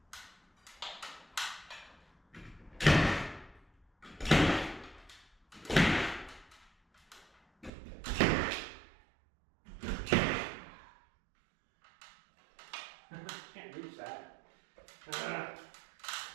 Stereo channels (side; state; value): left; drops out; at 7.7 s